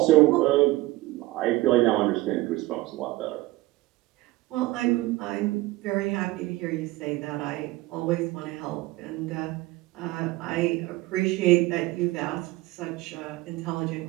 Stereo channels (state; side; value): quieter; left; 19.1 dB